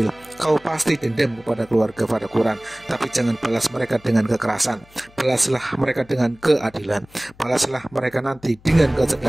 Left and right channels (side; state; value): left; noise; hum, 27 dB below the sound